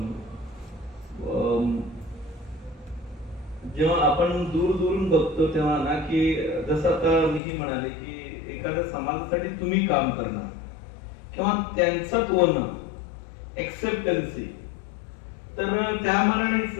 जेव्हा आपण दूरून बघतो तेव्हा ना की जसं आता मीही म्हणाले की एखाद्या समाजासाठी तुम्ही काम करणार किंवा त्यांचं होणं, एक्सेप्टन्सी, तर त्या मानानेच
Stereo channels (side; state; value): right; drops out; at 7.4 s